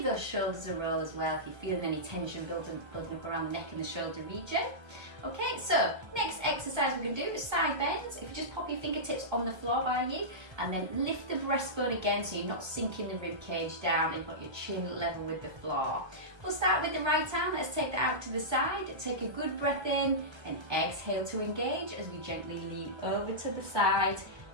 those shoulders a roll as well if you're feeling any tension building up around the neck and the shoulder region. Okay, so next exercise we're going to do is side bends. If you just pop your fingertips on the floor by you and then lift the breastbone again so you're not sinking the rib cage down and you've got your chin level with the floor. We'll start with the right arm. Let's take that out to the side. Take a good breath in and exhale to engage as we gently lean over to the side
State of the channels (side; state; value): left; late; 1.3 ms